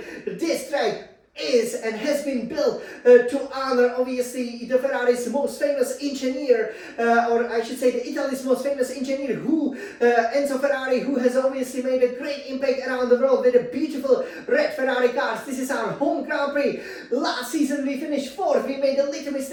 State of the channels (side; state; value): both; identical; correlation 1.00